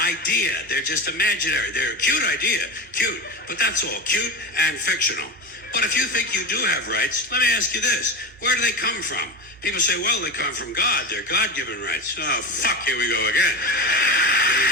They're just imaginary. They're a cute idea. Cute. But that's all. Cute and fictional. But if you think you do have rights, let me ask you this. Where do they come from? People say, well, they come from God. They're God-given rights. Oh, fuck, here we go again. Here we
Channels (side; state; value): both; normal; correlation 0.23